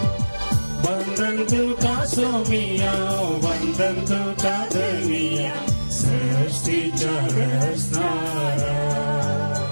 वंदन तुका सोमिया वंदन तुका धनिया सृष्टीच्या रचणारा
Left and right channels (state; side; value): inverted; both; correlation -1.00